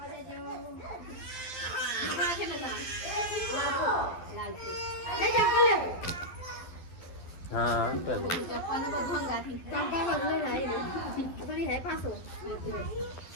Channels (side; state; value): right; late; 12 ms